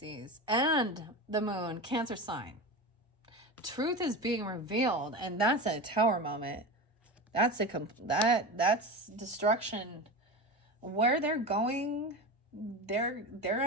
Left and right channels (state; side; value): normal; both; correlation 0.25